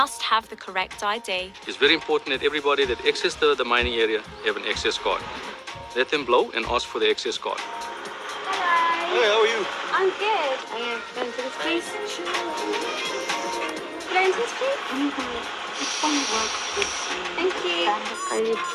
have the correct ID. It's very important that everybody that accesses the mining area have an access card. Let them blow and ask for the access card. Hello. Hey, how are you? I'm good. Going to this place? Going to this place? Thank you. I need a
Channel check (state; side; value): identical; both; correlation 1.00